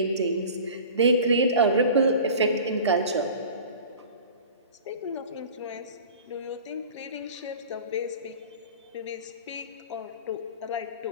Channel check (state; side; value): inverted; both; correlation -0.40